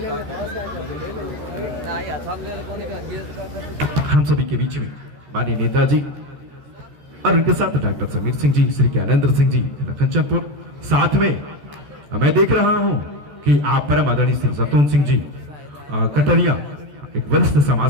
हम सभी के बीच में माननीय नेताजी और उनके साथ डॉक्टर समीर सिंह जी, श्री ज्ञानेंद्र सिंह जी कंचनपुर, साथ में मैं देख रहा हूं कि आप परम आदरणीय श्री सतून सिंह जी कटरिया एक वरिष्ठ समाज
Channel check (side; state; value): left; late; 14 ms